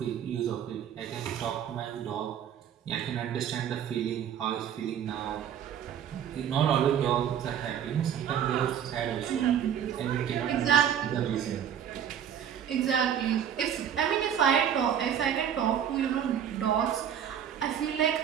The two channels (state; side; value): quieter; left; 9.1 dB